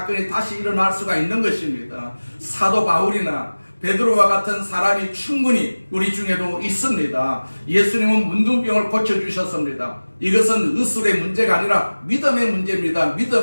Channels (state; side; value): inverted; both; correlation -1.00